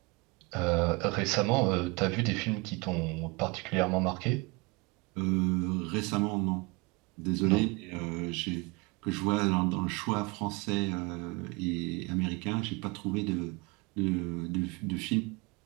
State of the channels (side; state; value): left; quieter; 26.4 dB